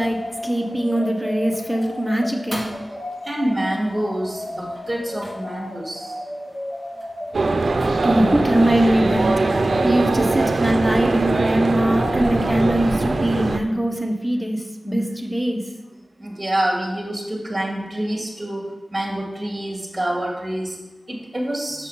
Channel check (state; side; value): normal; both; correlation 0.97